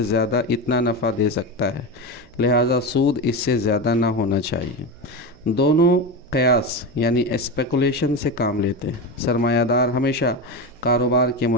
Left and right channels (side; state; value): right; noise; hum, 27 dB below the sound